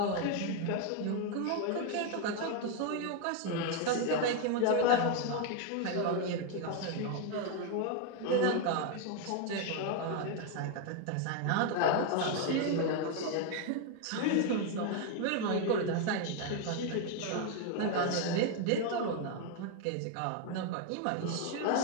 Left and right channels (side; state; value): both; different; correlation 0.01